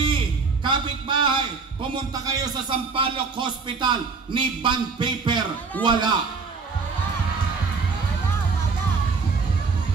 kapitbahay, pumunta kayo sa Sampaloc Hospital, ni bond paper, wala.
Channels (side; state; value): left; quieter; 4.7 dB